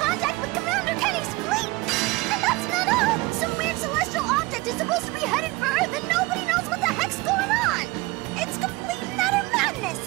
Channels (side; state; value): left; quieter; 22.1 dB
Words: with Commander Kenny's fleet. And that's not all. Some weird celestial object is supposed to be headed for Earth, and nobody knows what the heck's going on. It's complete and utter madness.